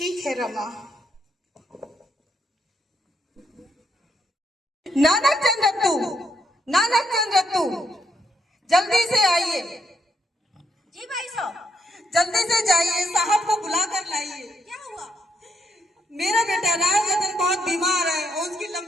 है रमा। नानक चंद रत्तू, नानक चंद रत्तू, जल्दी से आइए। जी भाई साहब। जल्दी से जाइए, साहब को बुला कर लाइए। क्या हुआ? मेरा बेटा राजरतन बहुत बीमार है और उसकी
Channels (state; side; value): normal; both; correlation 0.77